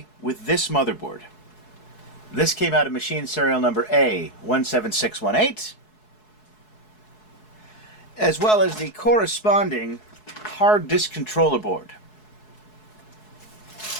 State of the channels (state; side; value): late; right; 4.7 ms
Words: with this motherboard. This came out of machine serial number A17618, as well as the corresponding hard disk controller board.